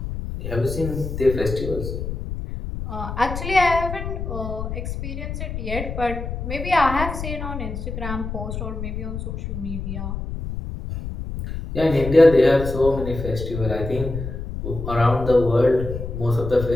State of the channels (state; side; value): noise; left; rumble, 6 dB below the sound